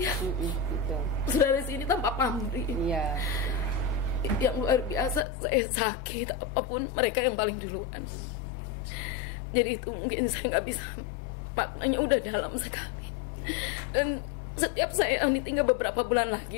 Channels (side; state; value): right; drops out; at 5.2 s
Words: Saudara sini tanpa pamrih. Yang luar biasa, saya sakit apapun mereka yang paling duluan. Jadi itu mungkin saya nggak bisa, maknanya udah dalam sekali. Dan setiap saya tinggal beberapa bulan